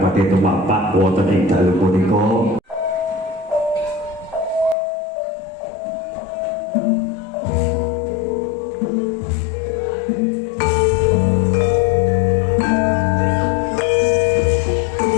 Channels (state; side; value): drops out; right; at 4.8 s